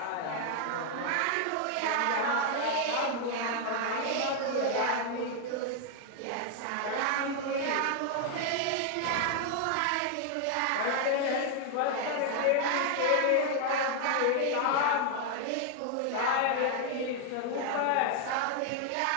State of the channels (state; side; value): different; both; correlation 0.00